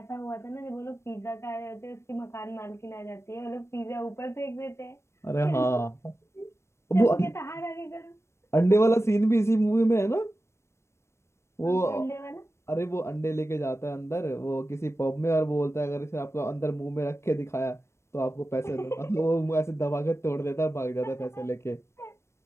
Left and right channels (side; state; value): right; late; 0.13 ms